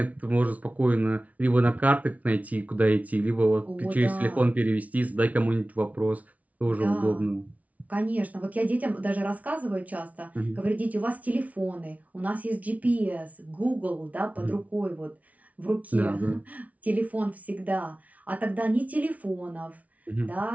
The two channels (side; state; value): left; late; 0.070 ms